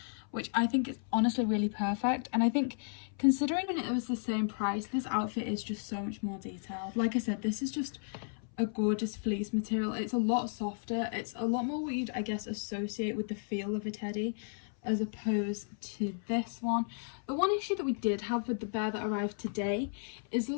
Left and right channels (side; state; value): right; silent; 55 dB below the other